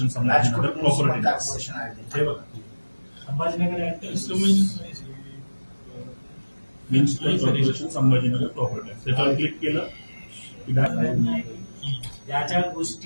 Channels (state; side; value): inverted; both; correlation -1.00